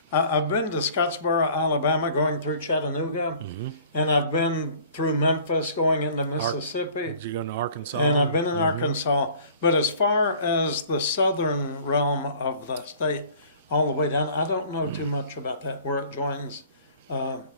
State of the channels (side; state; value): both; inverted; correlation -0.50